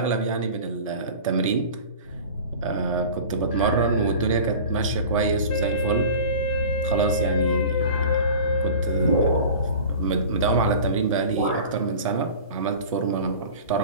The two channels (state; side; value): inverted; both; correlation -0.38